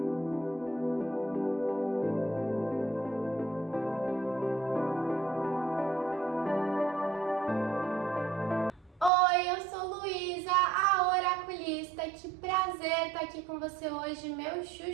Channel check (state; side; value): drops out; left; at 9.1 s